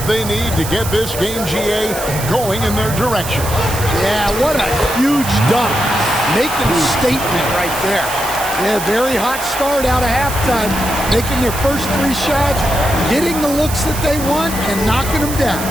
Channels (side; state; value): right; noise; hiss, 8 dB below the sound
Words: they need to get this game, GA, going in their direction. Yeah, what a huge dunk. Making a statement right there. Yeah, very hot start out of halftime. Making their first 3 shots, getting the looks that they want, and knocking them down.